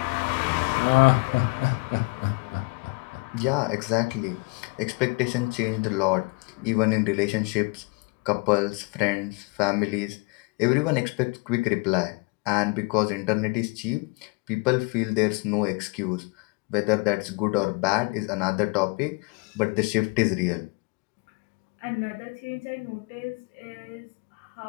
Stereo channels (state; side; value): quieter; right; 28.7 dB